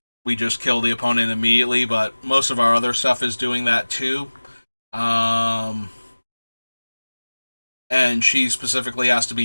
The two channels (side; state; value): both; inverted; correlation -1.00